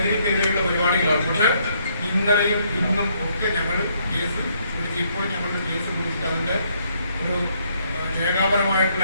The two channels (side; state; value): both; inverted; correlation -0.71